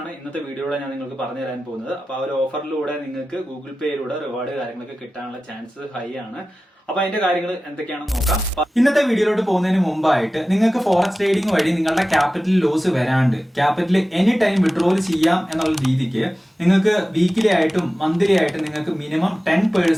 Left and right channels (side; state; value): both; normal; correlation 0.95